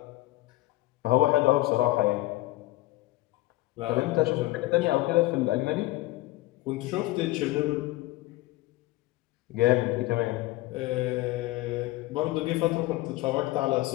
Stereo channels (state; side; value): quieter; right; 18.6 dB